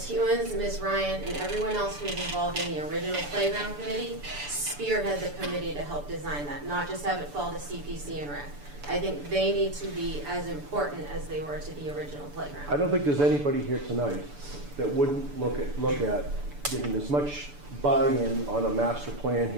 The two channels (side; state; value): left; late; 6.9 ms